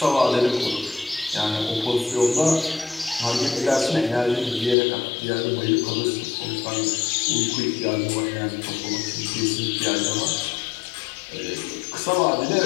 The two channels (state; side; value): drops out; right; at 4.8 s